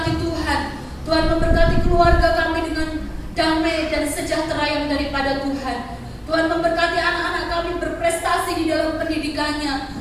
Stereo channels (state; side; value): identical; both; correlation 1.00